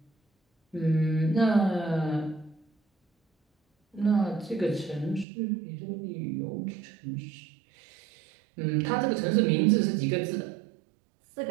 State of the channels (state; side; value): drops out; left; at 5.2 s